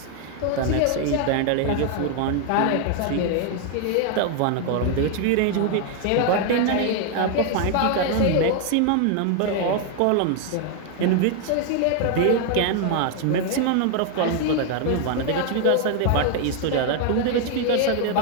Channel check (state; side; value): different; both; correlation 0.00